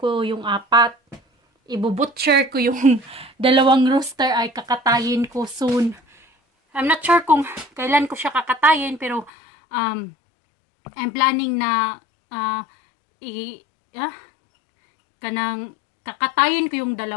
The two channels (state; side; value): drops out; right; at 9.3 s